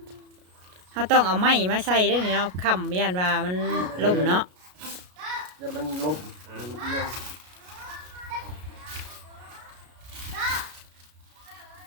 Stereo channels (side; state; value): left; late; 33 ms